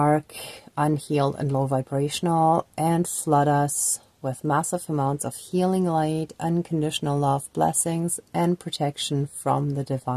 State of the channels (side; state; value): both; identical; correlation 1.00